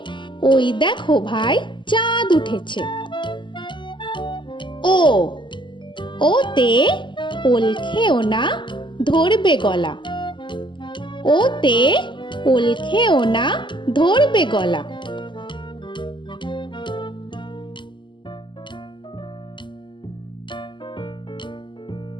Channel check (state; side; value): late; right; 0.23 ms